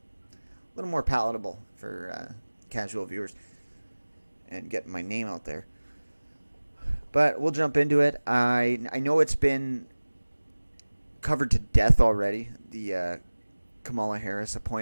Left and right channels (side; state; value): both; inverted; correlation -1.00